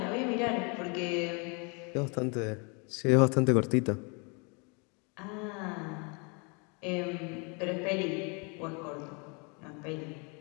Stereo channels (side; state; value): right; quieter; 33.0 dB